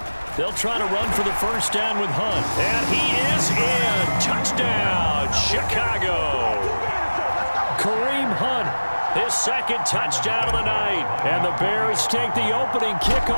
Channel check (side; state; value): both; inverted; correlation -1.00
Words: They'll try to run for the first down with Hunt. And he is in. Touchdown, Chicago. Kareem Hunt, His 2nd touchdown of the night. and the Bears take the opening